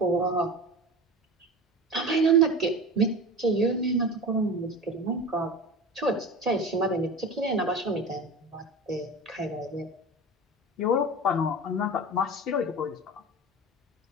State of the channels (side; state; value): both; normal; correlation 0.31